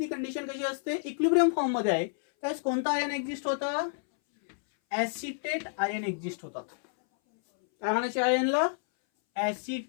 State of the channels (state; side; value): silent; right; 58 dB below the other